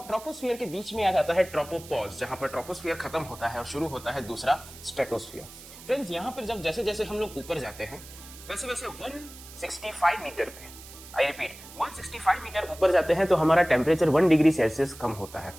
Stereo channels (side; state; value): right; noise; hiss, 17 dB below the sound